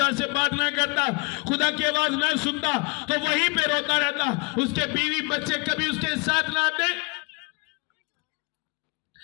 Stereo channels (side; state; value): right; quieter; 30.1 dB